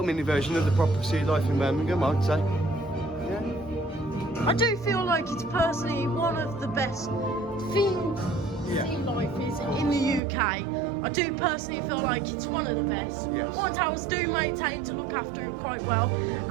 mini version of the proper sea life in Birmingham, I'd say. I do feel like it's personally one of the best themed sea lifes in the UK. I do personally feel like it's one of the best. Alton Towers do maintain to look after it quite well.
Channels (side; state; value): left; drops out; at 10.2 s